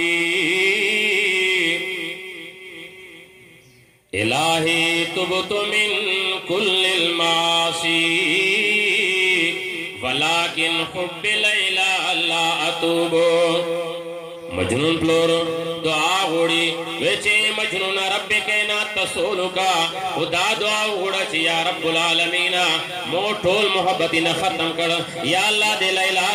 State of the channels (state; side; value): identical; both; correlation 1.00